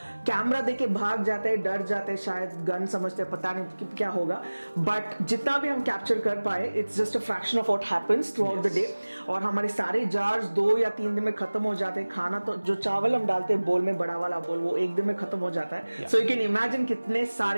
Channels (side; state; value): both; inverted; correlation -1.00